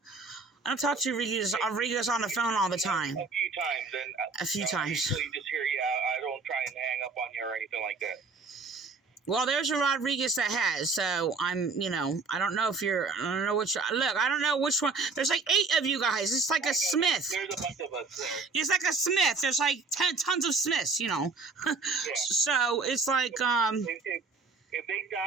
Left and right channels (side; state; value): left; quieter; 4.3 dB